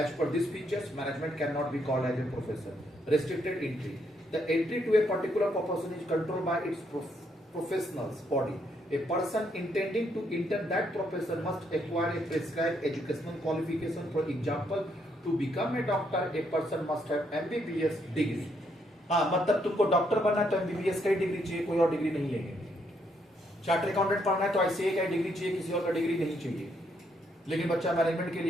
per this features management can not be called as a profession. Restricted entry, the entry to a particular profession is controlled by its professionals body. A person intending to enter that profession must acquire a prescribed educational qualification. For example, to become a doctor, a person must have MBBS degree. हाँ, मतलब तुमको doctor बनना है तो MBBS का ही degree चाहिए, कोई और डिग्री नहीं लेंगे। चार्टर अकाउंटेंट पढ़ना है तो ICA का ही डिग्री चाहिए, किसी और का डिग्री नहीं चाहिए। लेकिन बच्चा मैनेजमेंट के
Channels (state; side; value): normal; both; correlation 0.74